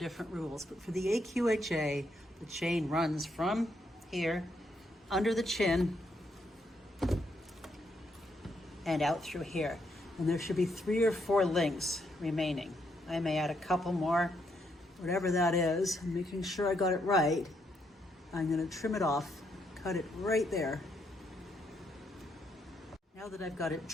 rules, but for the AQHA, the chain runs from here, under the chin, and out through here. And there should be 3 or 4 links remaining. I may add a couple more, whatever that is. I'm making sure I got it right. I'm going to trim it off, cut it right there. Now that I've got it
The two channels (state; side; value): normal; both; correlation 0.76